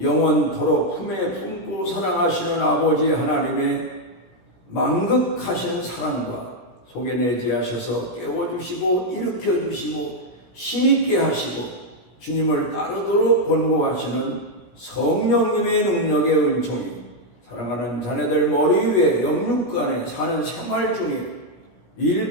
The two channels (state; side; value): late; right; 16 ms